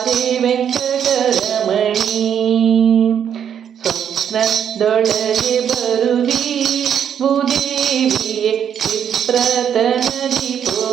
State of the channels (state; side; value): quieter; left; 8.7 dB